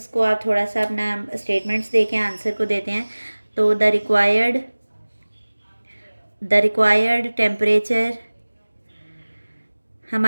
को आप थोड़ा सा अपना स्टेटमेंट्स दे के आंसर को देते हैं। तो द रिक्वायर्ड टेम्परेचर,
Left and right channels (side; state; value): both; inverted; correlation -1.00